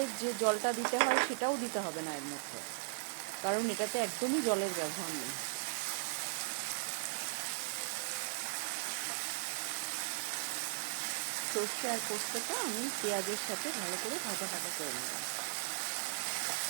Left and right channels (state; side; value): silent; left; digital silence